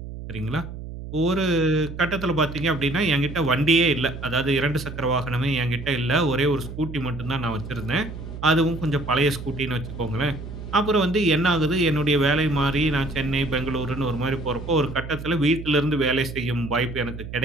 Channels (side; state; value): right; noise; hum, 10 dB below the sound